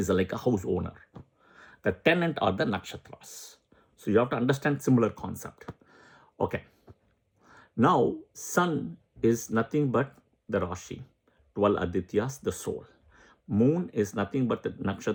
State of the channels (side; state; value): both; identical; correlation 1.00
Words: like a house owner. The tenant are the nakshatras. So you have to understand similar concept. Okay. Now, sun is nothing but the Rashi, 12 Adityas, the soul. Moon is nothing but the